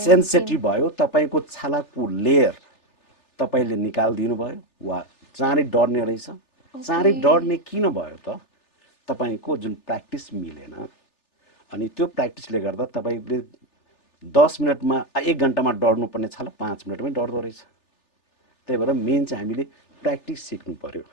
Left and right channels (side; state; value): right; late; 3.4 ms